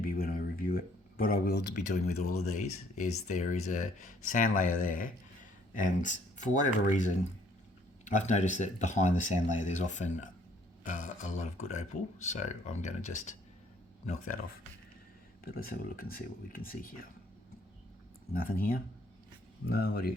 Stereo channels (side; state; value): both; normal; correlation 0.63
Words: when I review it. What I will be doing with all of these is there is a sand layer there, and for whatever reason, I've noticed that behind the sand layer there's often a lot of good opal, so I'm going to just knock that off. But let's have a look and see what we can see here. Nothing here. No, what do you